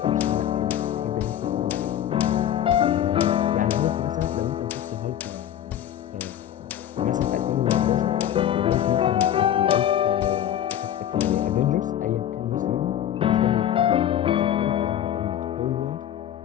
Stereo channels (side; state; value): right; quieter; 10.9 dB